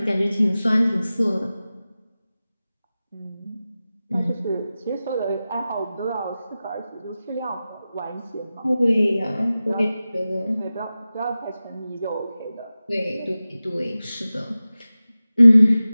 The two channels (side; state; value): both; inverted; correlation -0.95